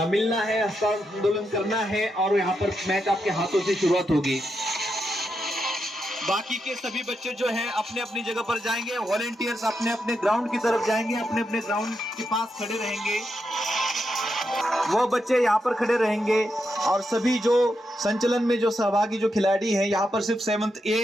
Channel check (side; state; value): both; normal; correlation 0.84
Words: मिलना है, हस्तांदोलन करना है, और यहाँ पर मैच आपके हाथों से शुरुआत होगी। बाकी के सभी बच्चे जो हैं अपने अपनी जगह पर जाएंगे, वॉलेंटियर्स अपने अपने ग्राउंड की तरफ जाएंगे, अपने अपने ग्राउंड के पास खड़े रहेंगे। वो बच्चे यहाँ पर खड़े रहेंगे और सभी जो संचलन में जो सहभागी जो खिलाड़ी हैं, यहाँ पर सिर्फ 7th A